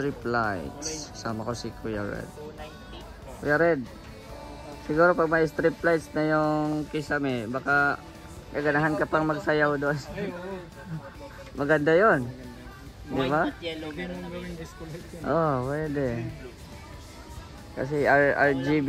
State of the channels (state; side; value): identical; both; correlation 1.00